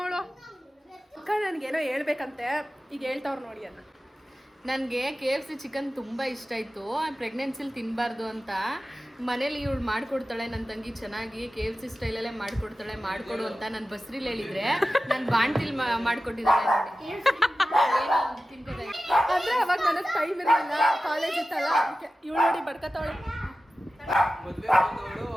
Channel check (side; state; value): both; normal; correlation 0.94